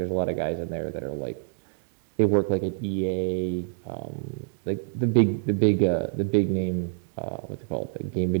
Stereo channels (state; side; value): silent; left; digital silence